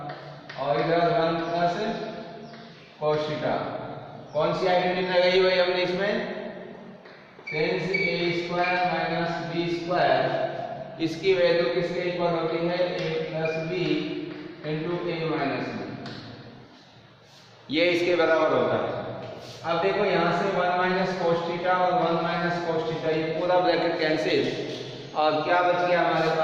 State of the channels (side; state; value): both; identical; correlation 1.00